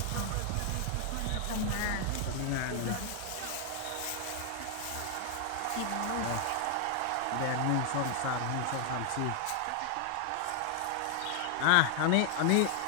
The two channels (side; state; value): both; different; correlation 0.00